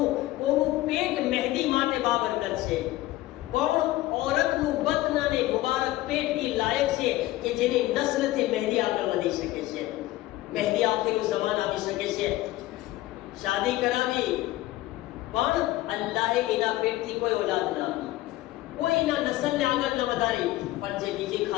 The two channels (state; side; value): quieter; right; 16.9 dB